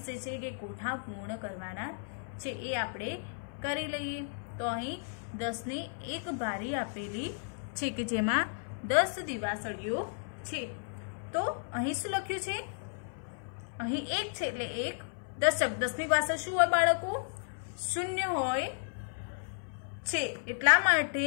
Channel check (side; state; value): right; silent; 55 dB below the other